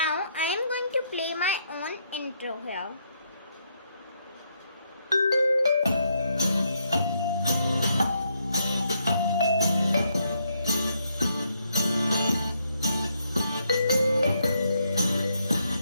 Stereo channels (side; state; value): both; inverted; correlation -0.76